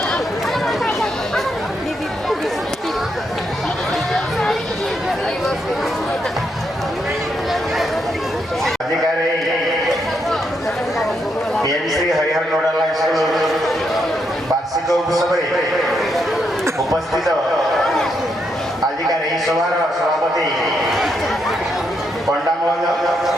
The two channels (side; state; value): both; normal; correlation 0.79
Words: अधिकारी श्री हरिहर नोडाल स्कूल वार्षिक उत्सव उपस्थित आजिकार यही सभार सभापति पंडा महोदय